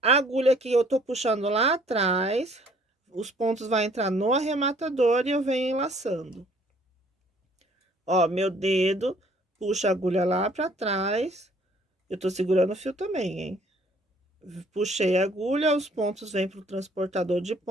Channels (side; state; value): both; normal; correlation 0.59